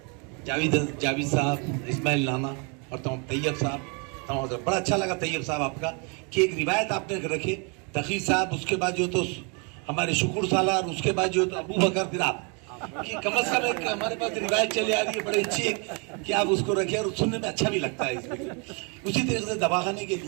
जावेद साहब, इस्माइल नाना और तैयब साहब। बड़ा अच्छा लगा तैयब साहब आपका कि एक रिवायत आपने रखे, तकी साहब, उसके बाद जो तो हमारे शुक्र सालार, उसके बाद जो तो अबू बकर, फिर आप, कि कम अज कम एक हमारे पास रिवायत चली आ रही है बड़ी अच्छी कि आप उसको रखें और सुनने में अच्छा भी लगता है इसमें। उसी तरीके से दवाखाने के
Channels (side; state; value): left; quieter; 34.4 dB